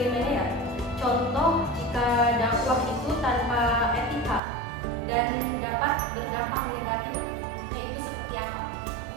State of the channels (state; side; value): drops out; left; at 4.4 s